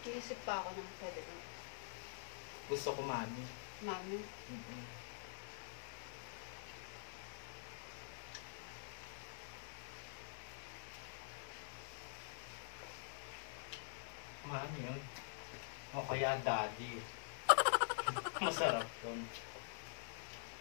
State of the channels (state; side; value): silent; right; digital silence